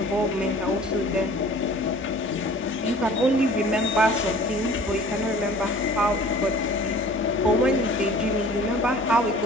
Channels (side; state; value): both; normal; correlation 0.48